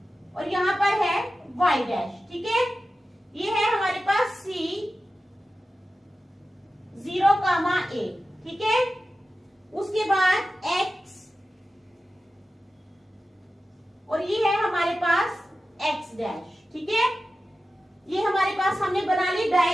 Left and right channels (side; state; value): both; normal; correlation 0.93